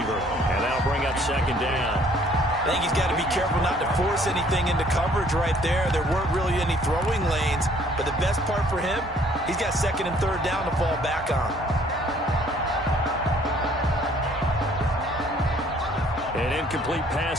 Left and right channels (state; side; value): normal; both; correlation 0.60